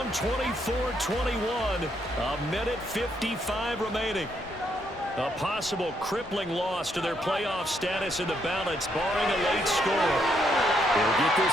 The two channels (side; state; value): both; normal; correlation 0.74